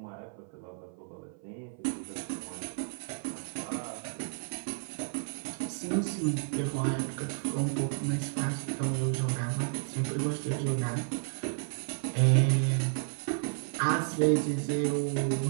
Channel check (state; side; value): silent; left; 56 dB below the other